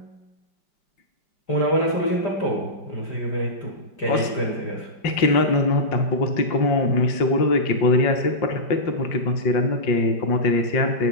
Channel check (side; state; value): right; late; 5.1 ms